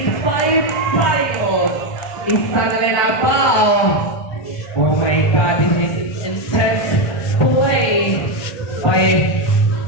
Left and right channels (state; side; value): late; right; 1.2 ms